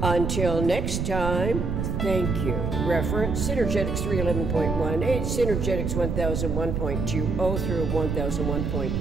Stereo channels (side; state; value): right; noise; rumble, 2 dB below the sound